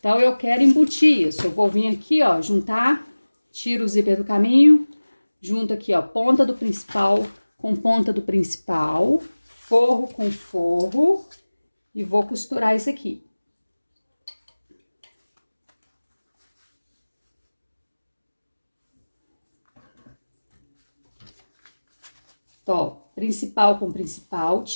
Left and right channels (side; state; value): both; inverted; correlation -1.00